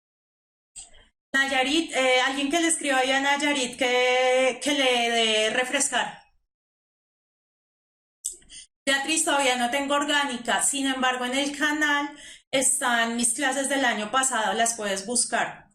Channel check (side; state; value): both; identical; correlation 1.00